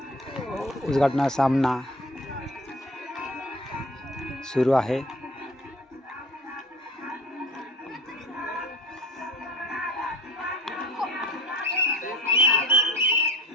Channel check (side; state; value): both; normal; correlation 0.43